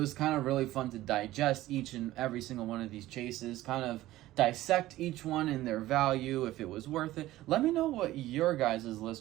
kind of really fun to digest each and every single one of these chases, kind of dissect each one and their value, if it was worth it. Let me know what your guys'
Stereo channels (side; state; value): left; quieter; 15.9 dB